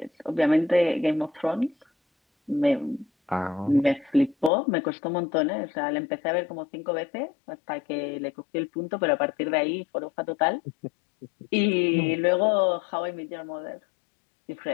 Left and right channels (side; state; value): right; drops out; at 4.5 s